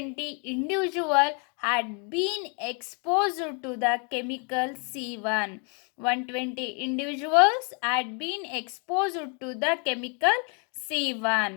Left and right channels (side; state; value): right; quieter; 36.9 dB